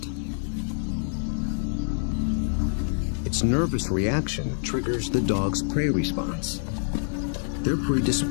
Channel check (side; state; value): right; silent; 58 dB below the other